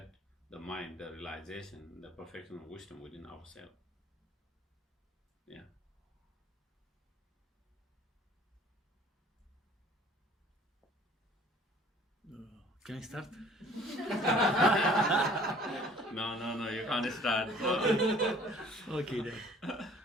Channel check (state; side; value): normal; both; correlation 0.53